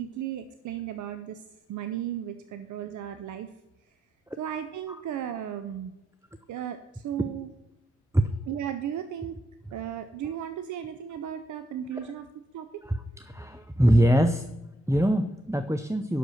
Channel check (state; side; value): normal; both; correlation 0.79